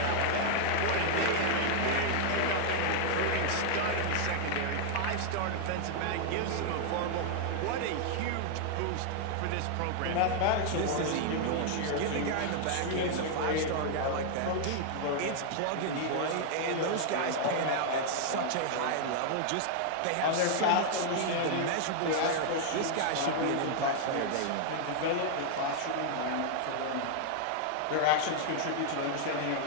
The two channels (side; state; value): both; different; correlation 0.00